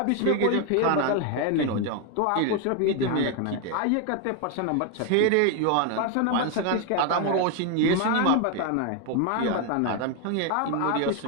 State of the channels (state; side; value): different; both; correlation 0.01